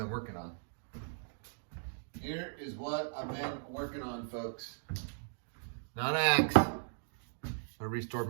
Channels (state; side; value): silent; left; digital silence